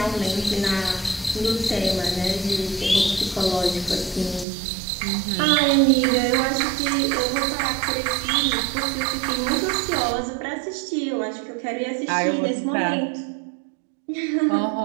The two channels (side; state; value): left; drops out; at 4.5 s